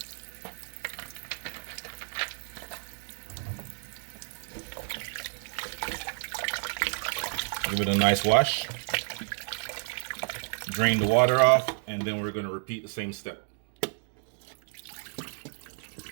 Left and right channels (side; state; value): left; silent; 57 dB below the other